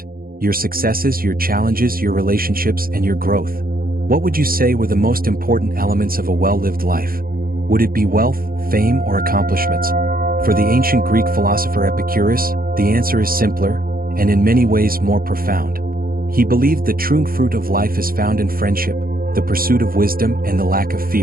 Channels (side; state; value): left; late; 0.42 ms